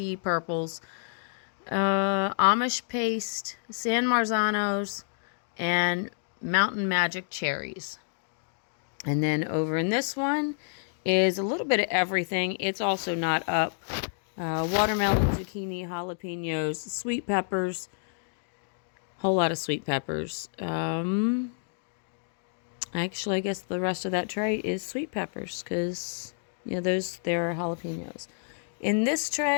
purples, Amish paste, San Marzanos, and Mountain Magic cherries. And then over in this one is a little bit of everything. It's also not up. Watermelon, zucchini, jalapenos, sweet peppers, whole lot of sweet peppers. Actually, I guess the rest of that tray is sweet peppers because, you know, they're jalapenos. In this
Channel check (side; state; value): right; silent; digital silence